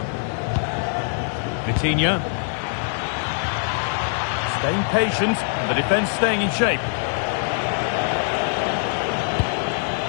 Vitinha. Staying patient, and the defence staying in shape.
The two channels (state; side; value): silent; right; digital silence